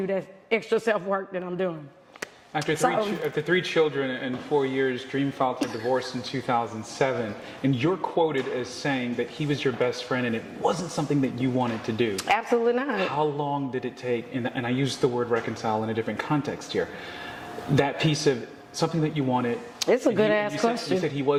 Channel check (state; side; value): identical; both; correlation 1.00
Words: that extra self-work that I'm doing. After three children and 4 years, Dream filed for divorce in 2007, and you're quoted as saying that he was your best friend and it wasn't something that you wanted to do. Absolutely not. How long did it take, and I use the word reconcile in a different context here, that piece of something that you wanted. It's a good ass question. You said he